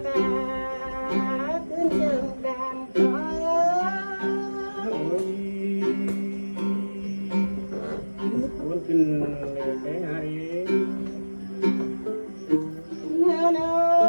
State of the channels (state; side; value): inverted; both; correlation -1.00